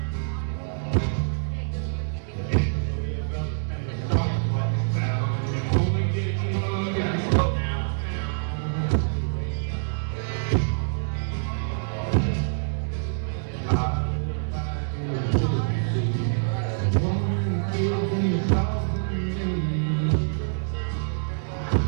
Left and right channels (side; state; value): left; silent; 61 dB below the other